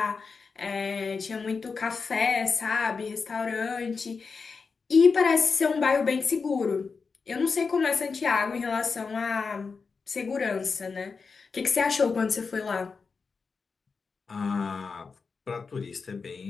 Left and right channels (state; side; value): quieter; right; 4.9 dB